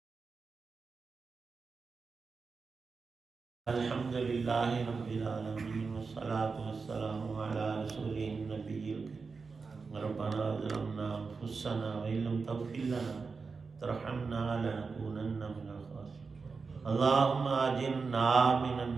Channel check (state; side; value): quieter; left; 4.7 dB